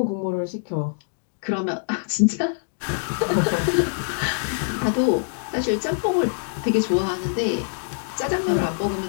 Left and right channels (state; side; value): silent; right; digital silence